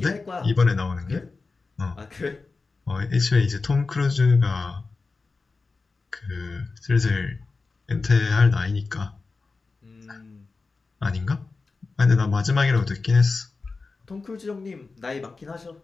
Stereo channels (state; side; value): quieter; right; 4.0 dB